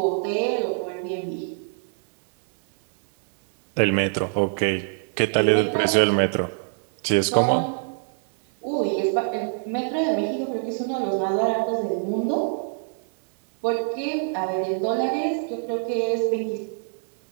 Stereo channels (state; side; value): silent; left; digital silence